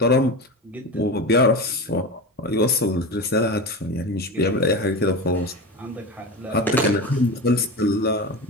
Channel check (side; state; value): both; normal; correlation 0.24